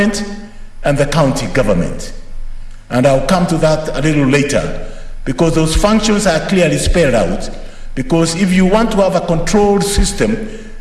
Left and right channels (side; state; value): both; identical; correlation 1.00